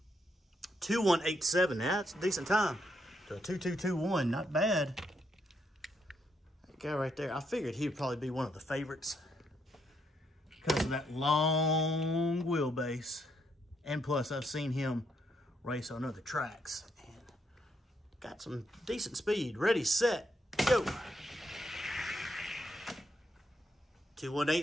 2187, that's a decent time. To a 2221, not bad. That guy right there, I figured he'd probably be one of the favorites because of that long wheelbase. And plus, I've seen him race on other tracks. And got some decent speed. Ready, set, go.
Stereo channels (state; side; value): normal; both; correlation 0.77